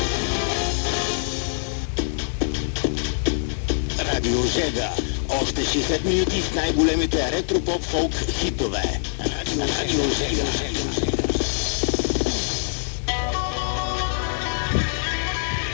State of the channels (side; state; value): right; silent; digital silence